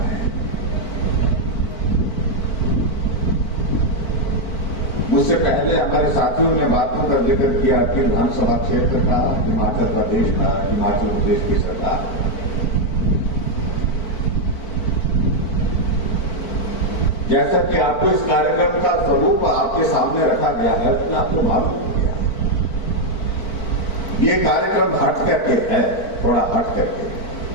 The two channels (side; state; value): right; late; 4.5 ms